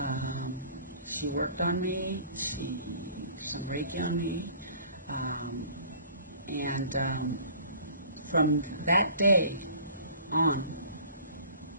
She worked on me. She did some Reiki on me. And from that day on,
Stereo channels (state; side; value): inverted; both; correlation -0.48